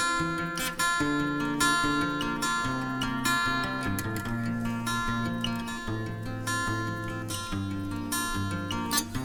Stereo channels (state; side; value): identical; both; correlation 1.00